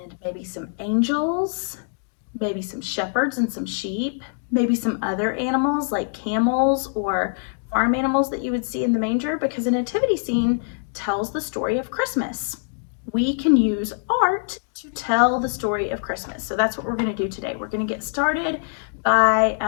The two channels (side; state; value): right; silent; digital silence